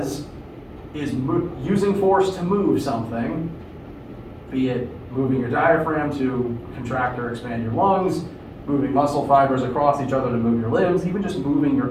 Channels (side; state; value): both; identical; correlation 1.00